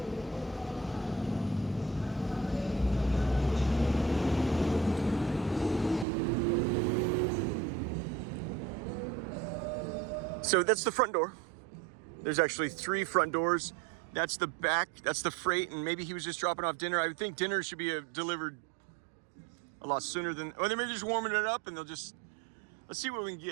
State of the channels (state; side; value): drops out; left; at 6.1 s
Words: So that's the front door. There's actually 3 front doors. That's the back, that's the freight, and maybe he was just dropping off dinner. I would think dinner should be delivered a lot sooner than, or they may be just warming it up and let's see what we can